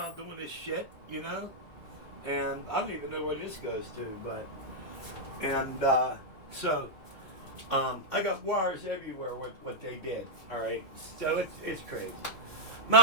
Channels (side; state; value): right; late; 3.6 ms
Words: doing this shit, you know? And I don't even know where this goes to, but, and, so, I got wires everywhere with what they did, all right? So it's crazy.